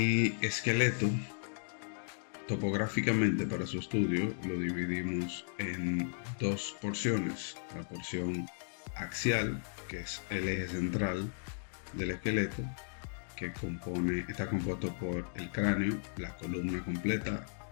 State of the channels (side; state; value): right; silent; digital silence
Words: esqueleto, topográficamente para su estudio, lo dividimos en dos porciones. La porción axial, que es el eje central del esqueleto, que está compuesto por el cráneo, la columna completa,